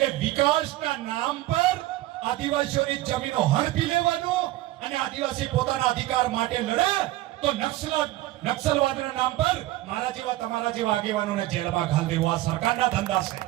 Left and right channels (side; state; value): left; quieter; 16.7 dB